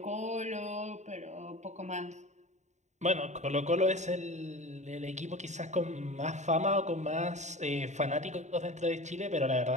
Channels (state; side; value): late; left; 0.34 ms